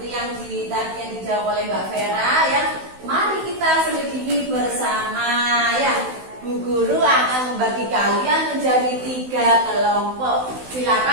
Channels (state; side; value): late; left; 16 ms